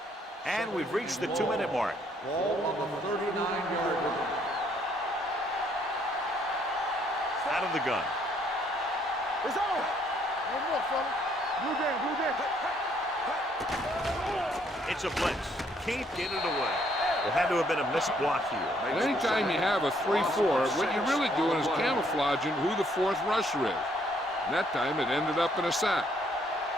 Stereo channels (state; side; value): normal; both; correlation 0.67